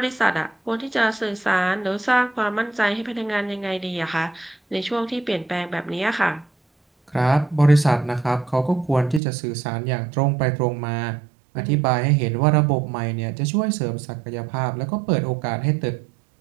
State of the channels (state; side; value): drops out; left; at 9.2 s